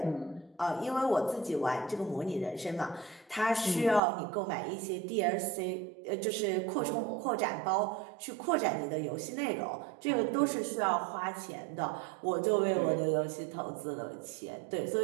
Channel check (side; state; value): left; drops out; at 4.0 s